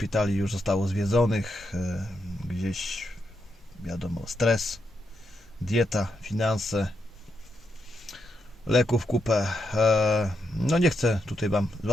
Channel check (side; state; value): both; normal; correlation 0.83